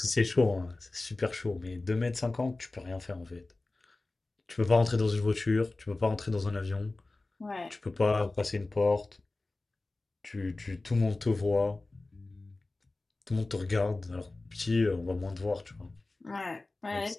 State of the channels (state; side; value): quieter; right; 3.1 dB